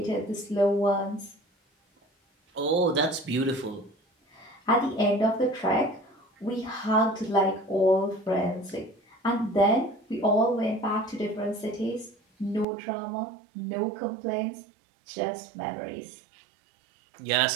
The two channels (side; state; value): left; drops out; at 12.7 s